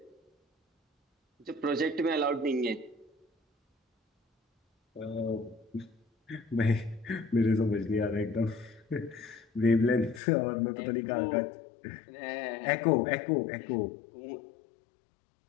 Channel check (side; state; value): right; drops out; at 10.2 s